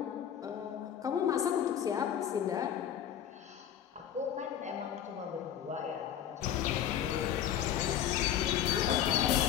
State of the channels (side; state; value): right; quieter; 9.9 dB